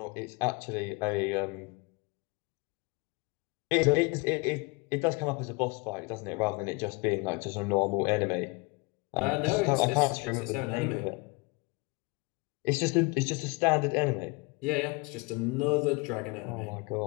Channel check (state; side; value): quieter; right; 27.9 dB